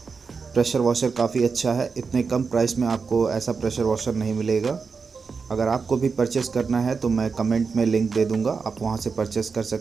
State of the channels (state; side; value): quieter; left; 5.1 dB